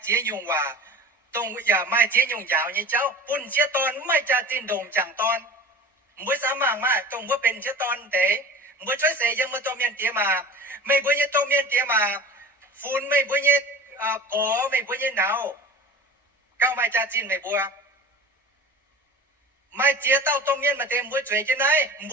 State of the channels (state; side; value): normal; both; correlation 0.37